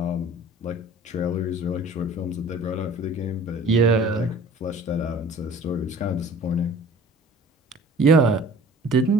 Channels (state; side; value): normal; both; correlation 0.47